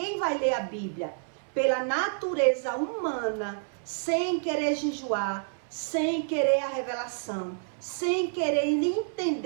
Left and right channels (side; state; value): left; silent; 59 dB below the other